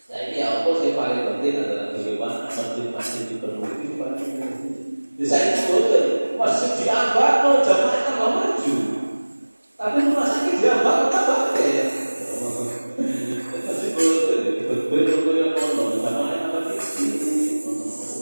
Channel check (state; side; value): inverted; both; correlation -1.00